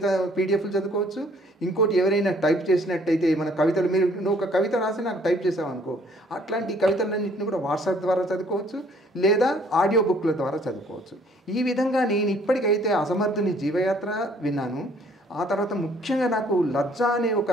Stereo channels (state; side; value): normal; both; correlation 0.61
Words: పీడిఎఫ్లు చదువుకోవచ్చు. ఇంకోటి ఎవరైనా టైప్ చేసినట్టయితే మన కవితలు, నువ్వు ఒక కవిత రాసి నాకు టైప్ చేసావు అనుకో, అట్లాంటి కవితలన్నింటినీ కూడా వాట్సాప్ ద్వారా చదువుకోవచ్చు, లేదా ఆడియో బుక్ల ద్వారా చదువుకోవచ్చు. ఈ విధంగా నేను ఇప్పటికైతే అసమర్థుని జీవయాత్ర విన్నాను. ఆ తర్వాత ముఖ్యంగా నాకు లజ్జా అనే ఒక